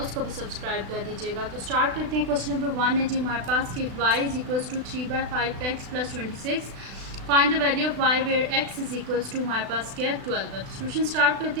भी सब्सक्राइब कर दीजिएगा। तो स्टार्ट करते हैं। क्वेश्चन नंबर 1 है जी हमारे पास कि y is equals to 3/5x + 26 find the value of y where x is equals to हमारे पास क्या है 12 है। तो सोल्यूशन स्टार्ट करते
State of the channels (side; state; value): left; late; 36 ms